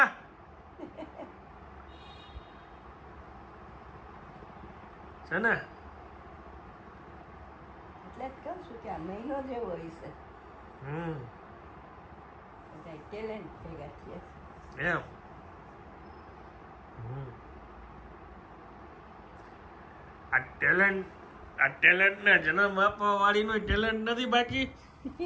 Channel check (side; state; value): both; identical; correlation 1.00